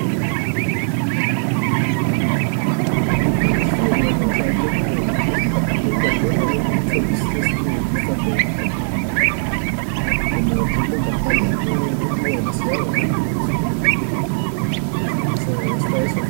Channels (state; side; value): silent; left; digital silence